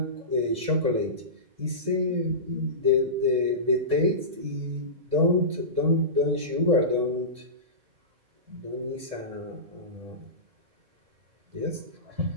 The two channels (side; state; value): left; late; 1.6 ms